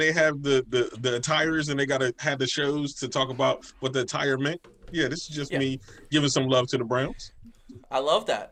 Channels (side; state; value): both; identical; correlation 1.00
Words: have the attires and they gotta have the shows to talk about what the attire meant. Yeah, this is just me giving some love to the Browns. I love